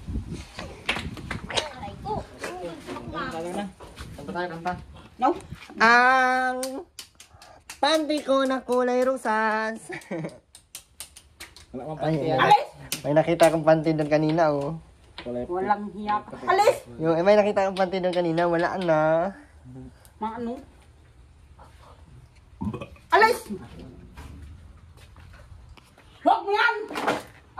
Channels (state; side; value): identical; both; correlation 1.00